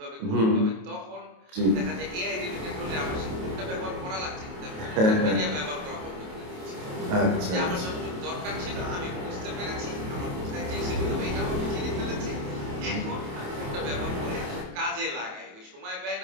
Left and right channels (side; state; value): left; late; 28 ms